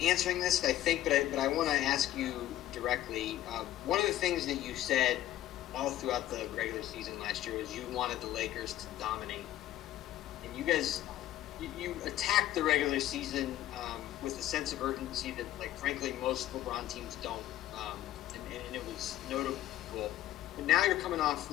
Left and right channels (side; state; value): right; quieter; 13.6 dB